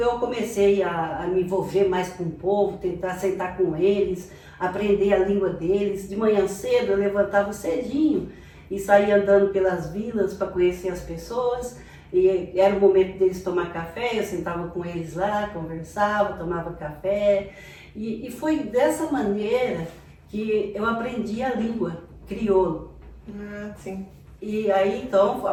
comecei a me envolver mais com o povo, tentar sentar com eles, aprender a língua deles. De manhã cedo, eu levantava cedinho e saía andando pelas vilas para conhecer as pessoas. E era o momento deles tomar café, eu sentava com eles lá, conversava, tomava café. E foi dessa maneira que eu aprendi a língua crioulo. Sim. E aí, então,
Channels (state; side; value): identical; both; correlation 1.00